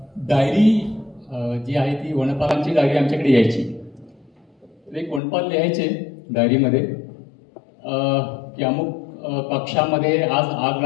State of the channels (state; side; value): drops out; right; at 5.2 s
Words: डायरी जी आहे ती वनपालांची डायरी आमच्याकडे यायची. एक वनपाल लिहायचे डायरीमध्ये की अमुक कक्षामध्ये आज आग